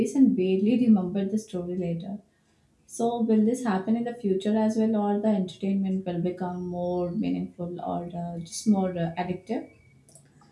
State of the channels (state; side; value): identical; both; correlation 1.00